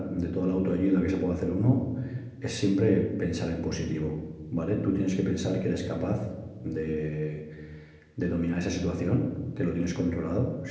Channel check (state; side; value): identical; both; correlation 1.00